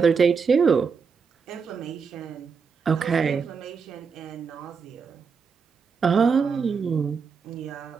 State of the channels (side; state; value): left; quieter; 5.7 dB